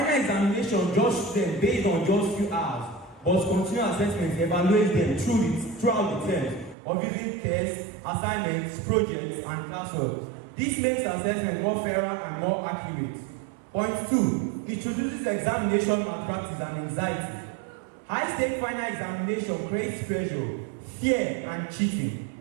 examination judges them based on just few hours, but continuous assessment evaluates them throughout the term of using tests, assignments, projects, and classwork. This makes assessment more fairer and more accurate. Point 2, it introduces examination malpractice and anxiety. High-stake final examination creates pressure, fear, and cheating,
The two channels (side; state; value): left; drops out; at 6.8 s